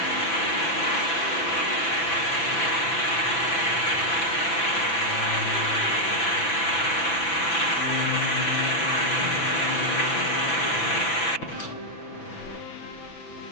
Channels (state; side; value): late; right; 6.0 ms